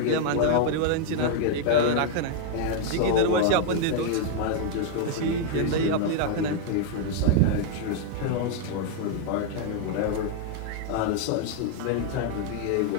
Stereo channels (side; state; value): both; different; correlation 0.00